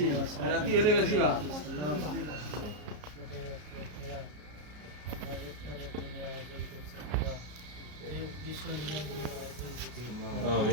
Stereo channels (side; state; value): left; late; 33 ms